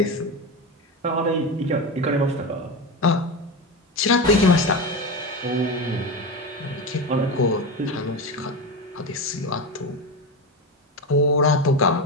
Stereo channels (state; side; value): normal; both; correlation 0.19